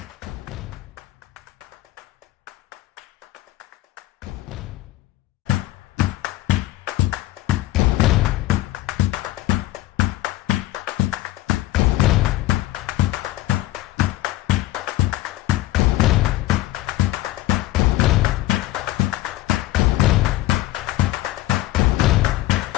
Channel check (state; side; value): quieter; right; 16.3 dB